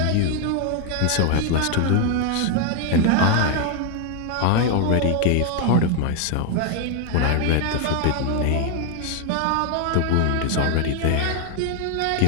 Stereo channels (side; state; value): both; different; correlation 0.01